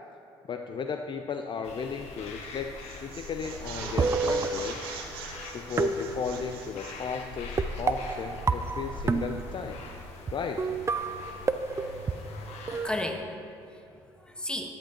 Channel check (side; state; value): both; normal; correlation 0.61